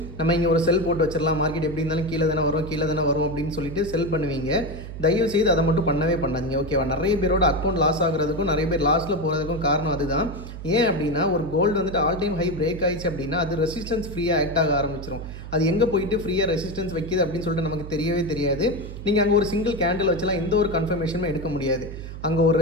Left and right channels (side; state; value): right; noise; hum, 10 dB below the sound